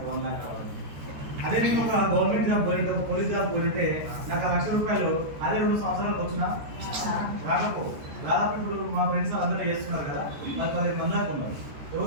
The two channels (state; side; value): late; left; 14 ms